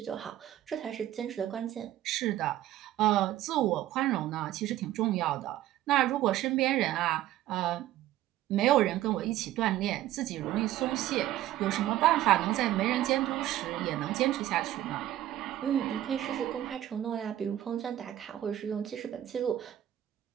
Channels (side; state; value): left; quieter; 13.5 dB